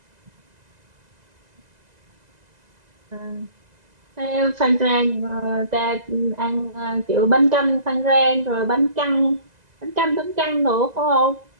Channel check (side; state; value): left; late; 2.0 ms